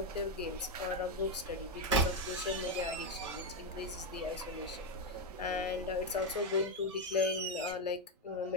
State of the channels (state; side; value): normal; both; correlation 0.06